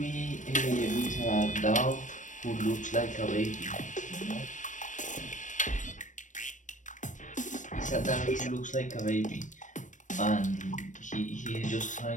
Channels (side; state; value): right; late; 0.37 ms